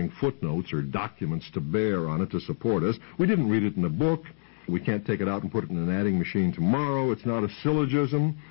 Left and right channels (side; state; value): right; silent; digital silence